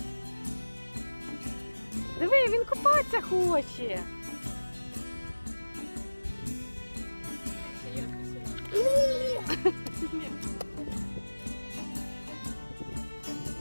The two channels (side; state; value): both; inverted; correlation -1.00